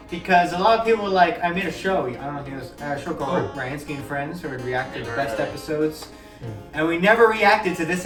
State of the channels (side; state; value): both; identical; correlation 1.00